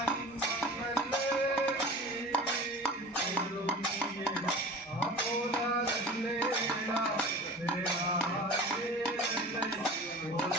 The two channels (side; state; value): both; normal; correlation 0.38